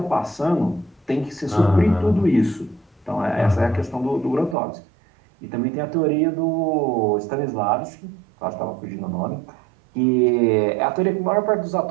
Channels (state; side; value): drops out; left; at 4.5 s